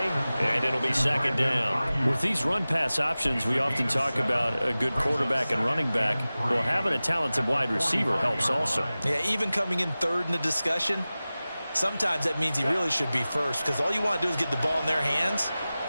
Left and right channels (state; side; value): inverted; both; correlation -0.97